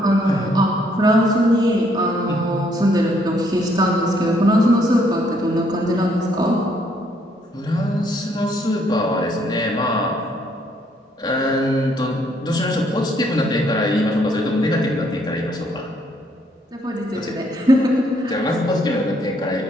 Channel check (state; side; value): normal; both; correlation 0.69